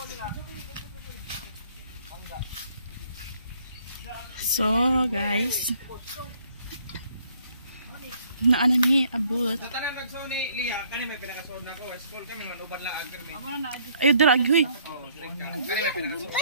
So, guys. Naana ni abot. Tanang nagsuon ni Lia, kani may pinakasuon nako. School kami manuban lang ang kami. Ayo dira agi hoy. Oh, kani may pinakasuon.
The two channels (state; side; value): inverted; both; correlation -0.64